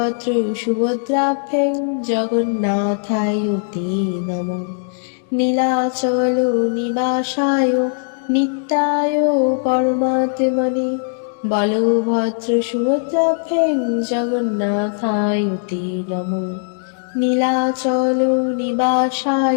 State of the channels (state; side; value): silent; right; 67 dB below the other